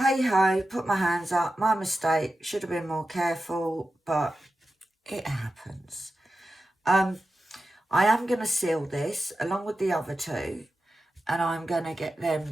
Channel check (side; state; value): both; normal; correlation 0.92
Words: ho, put my hands up, my mistake, should have been more careful, but it happens. I am going to seal this along with the other 2, and I'm going to get